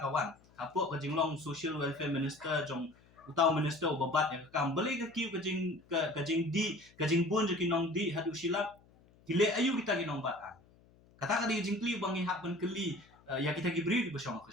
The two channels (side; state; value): left; noise; hum, 28 dB below the sound